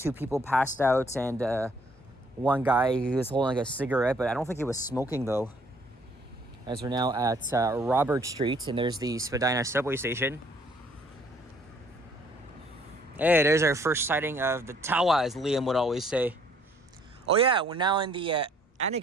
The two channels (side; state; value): both; normal; correlation 0.62